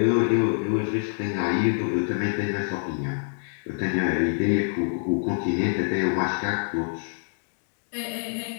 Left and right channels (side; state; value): right; silent; digital silence